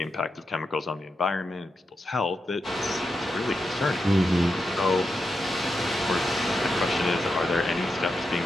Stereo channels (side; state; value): both; normal; correlation 0.87